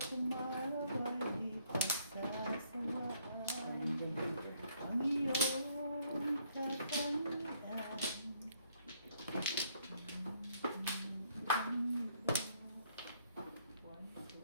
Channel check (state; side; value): inverted; both; correlation -0.68